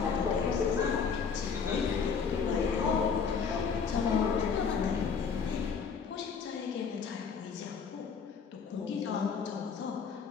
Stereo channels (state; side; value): quieter; right; 6.0 dB